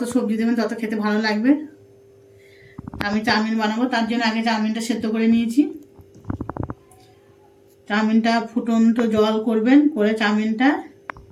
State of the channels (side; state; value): both; identical; correlation 1.00